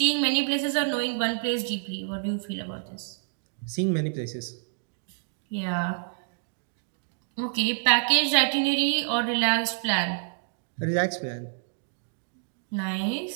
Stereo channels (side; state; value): left; silent; digital silence